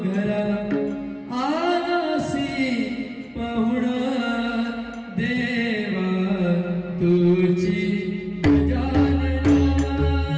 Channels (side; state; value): both; identical; correlation 1.00